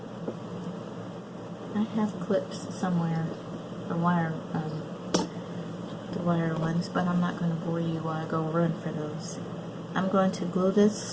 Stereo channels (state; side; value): identical; both; correlation 1.00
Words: I have clips somewhere, the wire ones, but I'm not going to bore you while I go run for those. I'm going to glue